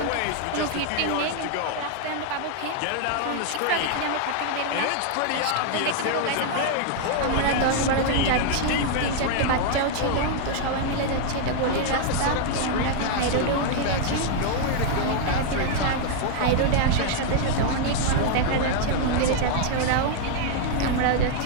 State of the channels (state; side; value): different; both; correlation 0.00